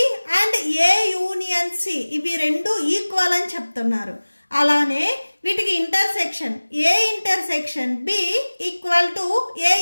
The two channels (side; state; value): both; inverted; correlation -1.00